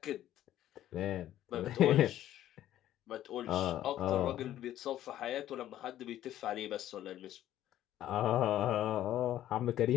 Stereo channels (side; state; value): right; quieter; 12.6 dB